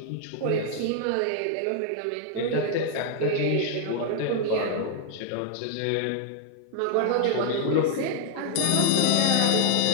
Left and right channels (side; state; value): both; different; correlation 0.00